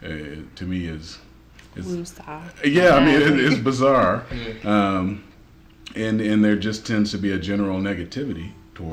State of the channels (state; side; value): identical; both; correlation 1.00